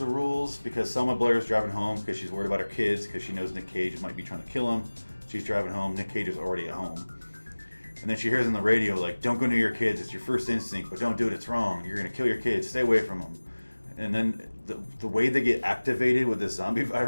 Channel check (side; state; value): both; inverted; correlation -1.00